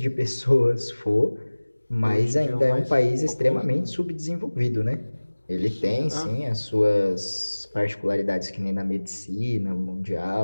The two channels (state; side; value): inverted; both; correlation -1.00